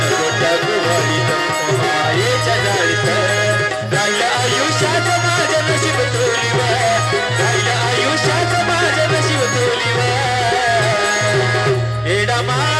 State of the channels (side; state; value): both; identical; correlation 1.00